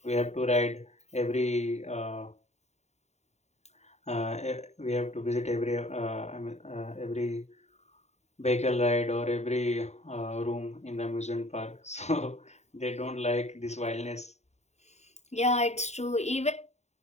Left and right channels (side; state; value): right; late; 0.32 ms